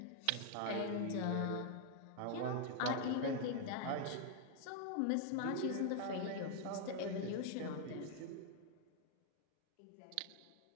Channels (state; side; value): different; both; correlation 0.00